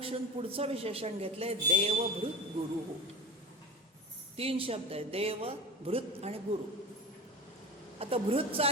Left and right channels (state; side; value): normal; both; correlation 0.30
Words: पुढचं विशेषण घेतलंय देवभृत गुरु. 3 शब्द आहे, देव, भृत आणि गुरु. आता भृतचा